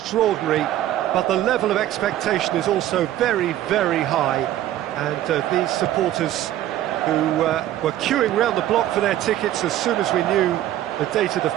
but the level of expectation is also very, very high. And these supporters who were queuing round the block for their tickets as soon as we knew the date of the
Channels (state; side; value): quieter; left; 13.1 dB